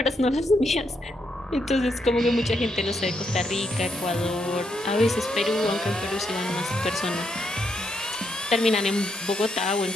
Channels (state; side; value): normal; both; correlation 0.78